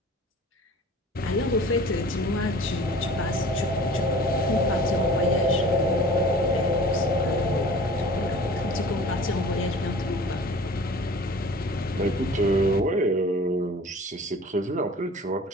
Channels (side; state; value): both; normal; correlation 0.44